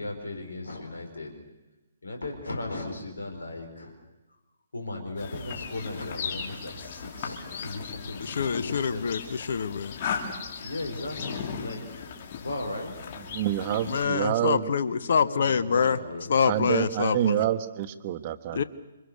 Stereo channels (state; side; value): inverted; both; correlation -0.63